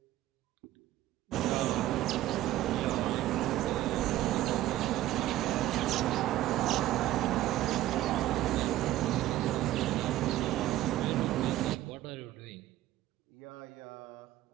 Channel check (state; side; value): quieter; left; 14.5 dB